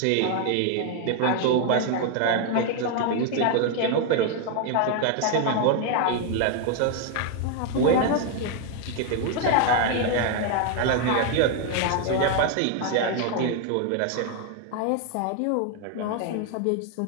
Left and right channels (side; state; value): both; different; correlation 0.01